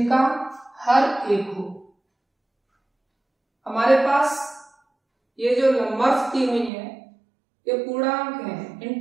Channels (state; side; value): drops out; left; at 6.7 s